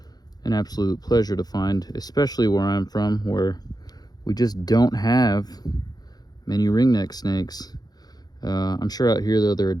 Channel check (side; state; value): right; late; 0.19 ms